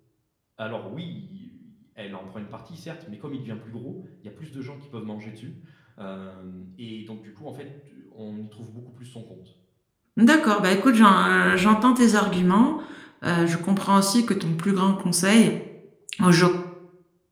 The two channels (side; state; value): both; identical; correlation 1.00